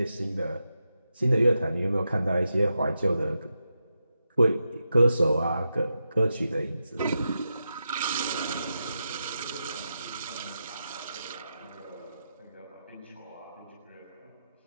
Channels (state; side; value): inverted; both; correlation -0.87